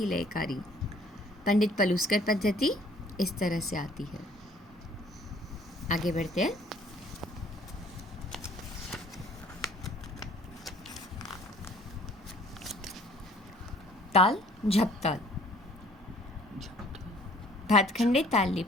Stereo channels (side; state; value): both; normal; correlation 0.56